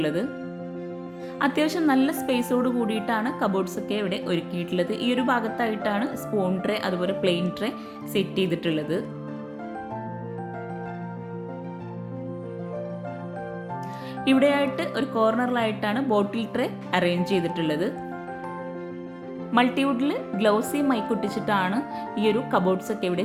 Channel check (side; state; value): both; identical; correlation 1.00